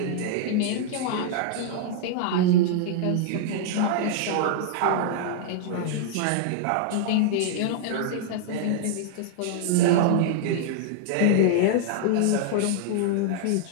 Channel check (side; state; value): both; different; correlation -0.01